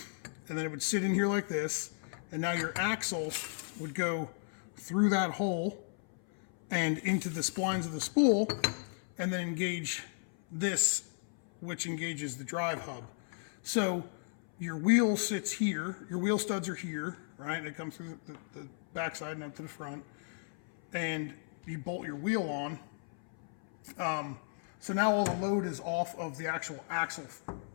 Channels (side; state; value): right; silent; 54 dB below the other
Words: and then it would sit in here like this, and now your axle would go through that hole and into the splines of the spool, and then engage this, which engages the drive hub. So your wheel sits here, your wheel studs are here, right? They come through the backside and up to the front, and you bolt your wheel on. So now all the load is off of the actual axle,